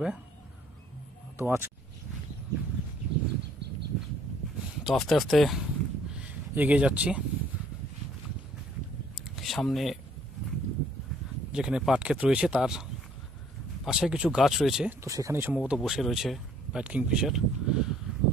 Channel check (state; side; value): normal; both; correlation 0.61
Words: তো আস্তে আস্তে এগিয়ে যাচ্ছি। সামনে যেখানে পাট ক্ষেত রয়েছে তার পাশে কিছু গাছ রয়েছে, তো সেখানেই সম্ভবত বসে রয়েছে হোয়াইট কিংফিশার।